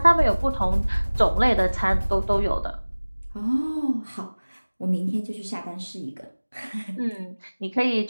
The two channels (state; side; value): inverted; both; correlation -1.00